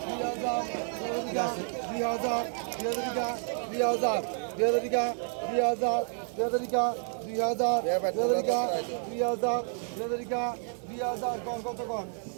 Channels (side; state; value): left; silent; 58 dB below the other